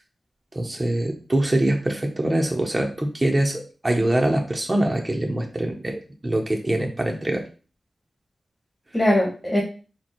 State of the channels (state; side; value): normal; both; correlation 0.96